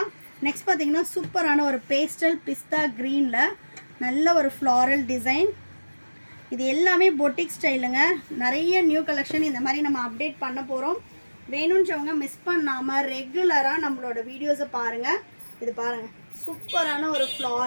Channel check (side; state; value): both; inverted; correlation -1.00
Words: நெக்ஸ்ட் பார்த்தீங்கன்னா சூப்பரான ஒரு பேஸ்டல் பிஸ்தா க்ரீனில் நல்ல ஒரு ஃப்ளாரல் டிசைன். இது எல்லாமே பொட்டிக் ஸ்டைலுங்க. நிறைய நியூ கலெக்ஷன் இந்த மாதிரி நம்ம அப்டேட் பண்ண போகிறோம். வேணுன்றவங்க மிஸ் பண்ணாமல் ரெகுலராக நம்மளோட வீடியோஸை பாருங்கள். இது பாருங்கள், சூப்பரான ஒரு